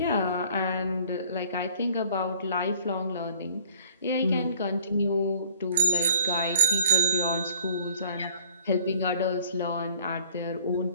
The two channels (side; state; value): both; inverted; correlation -0.51